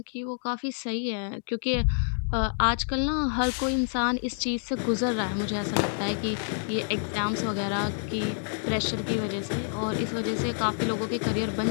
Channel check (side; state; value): right; silent; digital silence